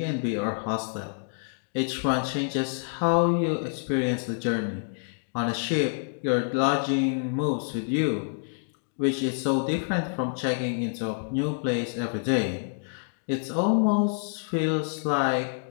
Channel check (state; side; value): silent; right; digital silence